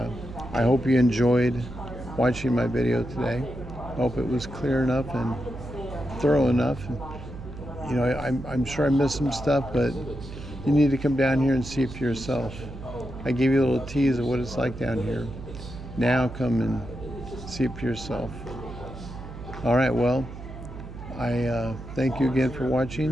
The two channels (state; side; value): noise; right; hum, 12 dB below the sound